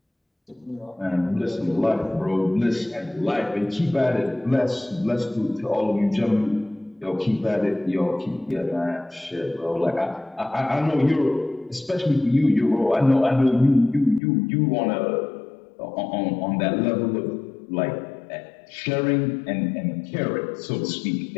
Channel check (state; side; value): drops out; right; at 14.2 s